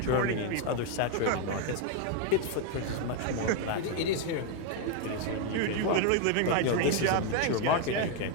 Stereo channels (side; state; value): both; different; correlation 0.01